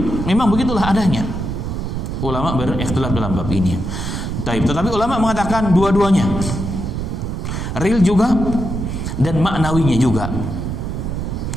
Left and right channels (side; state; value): right; noise; rumble, 4 dB below the sound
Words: memang begitulah adanya. Ulama berikhtilaf dalam bab ini. Tetapi ulama mengatakan dua-duanya, real juga dan maknawinya juga.